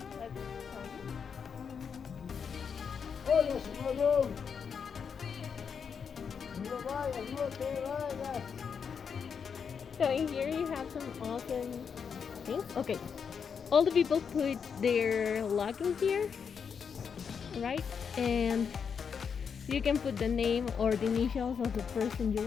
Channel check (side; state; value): right; quieter; 6.6 dB